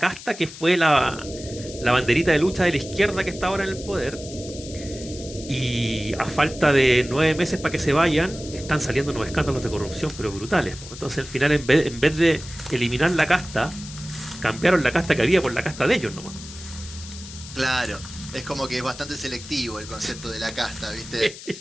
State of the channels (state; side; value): noise; left; hiss, 14 dB below the sound